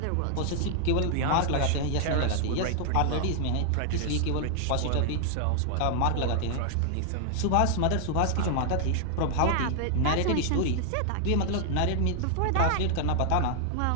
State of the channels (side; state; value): both; different; correlation 0.00